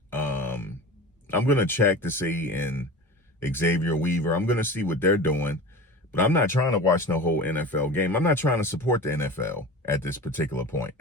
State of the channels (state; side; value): normal; both; correlation 0.33